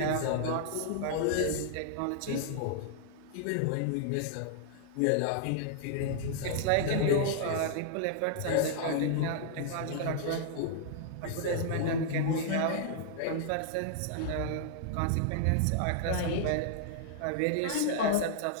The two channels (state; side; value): different; both; correlation -0.01